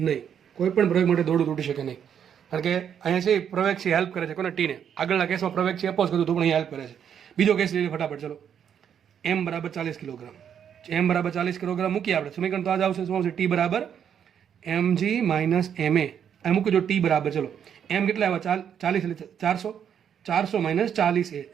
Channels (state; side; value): quieter; left; 8.5 dB